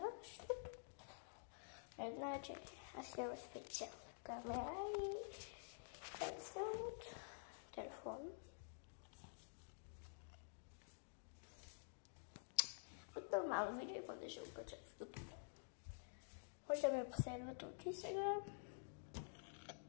защото значи аз имам специална камера и съм от телефон. От нормално видео и после ще го кача в YouTube. Може да ме последвате от и сега.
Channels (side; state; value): right; silent; digital silence